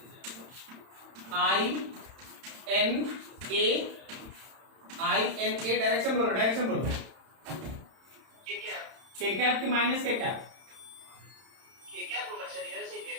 I n a डायरेक्शन बोलो, डायरेक्शन बोलो। ये क्या? k कैप की माइनस k कैप? ये क्या होगा सर? इधर से ही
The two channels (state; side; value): late; left; 31 ms